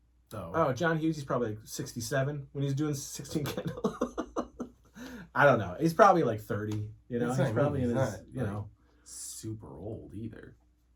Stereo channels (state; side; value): identical; both; correlation 1.00